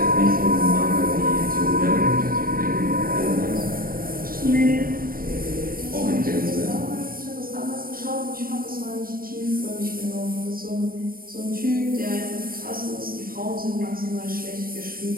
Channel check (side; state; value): left; late; 0.42 ms